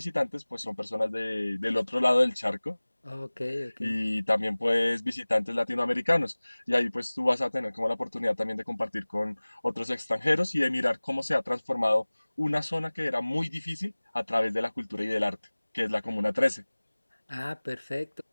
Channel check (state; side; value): inverted; both; correlation -1.00